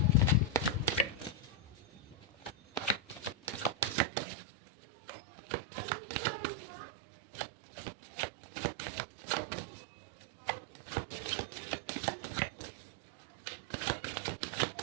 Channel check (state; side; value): drops out; left; at 4.0 s